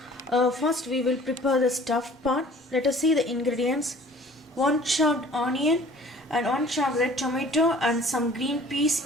First we will prepare the stuffed part. Let us see the ingredients. 1 chopped onion and 1 chopped red tomato and some green peas.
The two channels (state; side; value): normal; both; correlation 0.50